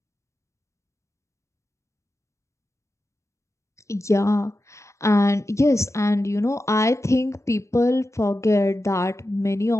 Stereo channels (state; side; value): late; right; 0.14 ms